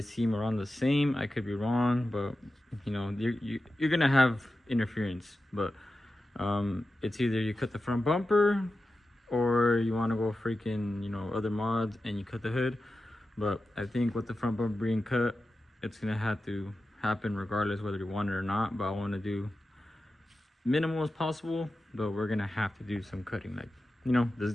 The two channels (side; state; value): both; normal; correlation 0.92